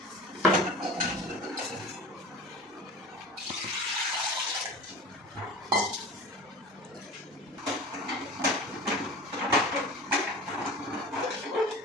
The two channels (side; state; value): both; normal; correlation 0.36